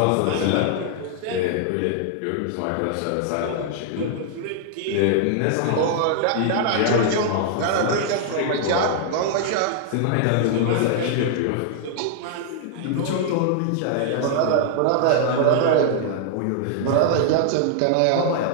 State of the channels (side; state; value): both; different; correlation 0.00